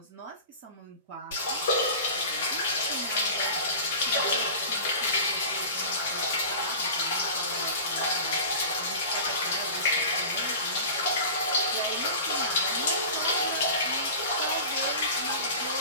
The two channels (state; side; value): inverted; both; correlation -0.35